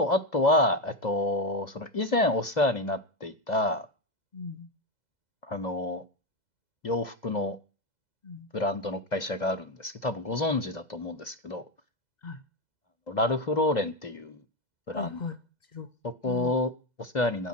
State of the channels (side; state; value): right; late; 2.0 ms